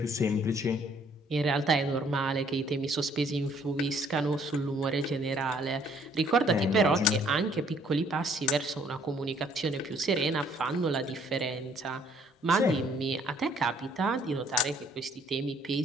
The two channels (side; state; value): both; normal; correlation 0.62